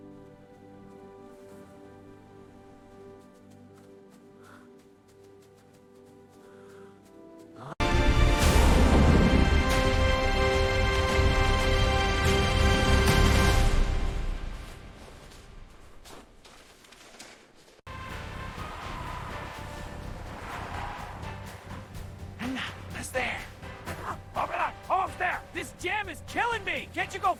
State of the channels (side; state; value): both; identical; correlation 1.00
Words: It's there. Open up. Almost there. This jam is killing me. Can't you go